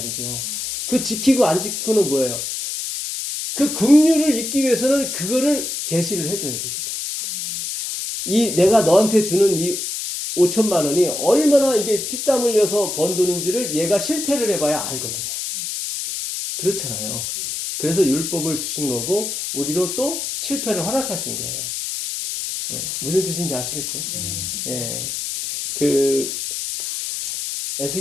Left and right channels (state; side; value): noise; left; hiss, 4 dB below the sound